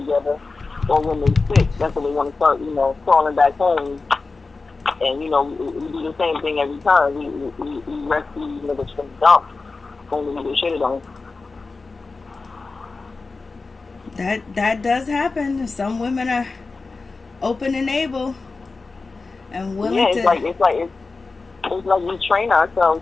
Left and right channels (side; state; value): right; quieter; 3.9 dB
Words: or when they sick. That's when they want to start, you know, crawling back home. And, you know, we do the same thing every time. We rescue these niggas from the dump. Only we get shitted on. That does happen. Some women are open and able and willing to. It's like we train ourselves